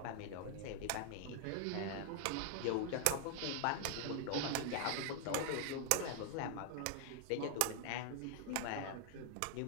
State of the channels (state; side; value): different; both; correlation 0.00